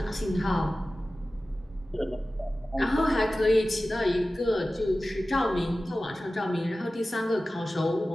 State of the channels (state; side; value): normal; both; correlation 0.96